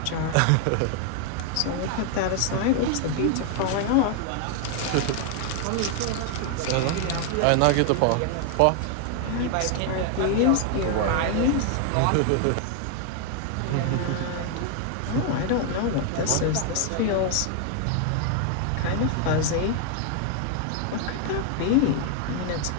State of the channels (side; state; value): both; different; correlation 0.00